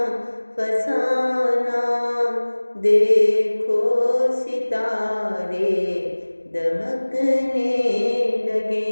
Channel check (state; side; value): inverted; both; correlation -1.00